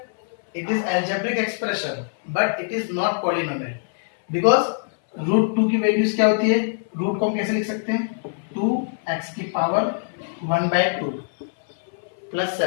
It is algebraic expression, but it is not polynomial because root 2 की values क्या होती है? रूट को हम कैसे लिख सकते हैं? 2x की power 1/2 plus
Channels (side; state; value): right; silent; 59 dB below the other